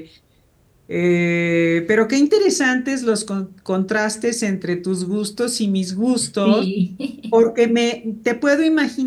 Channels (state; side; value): identical; both; correlation 1.00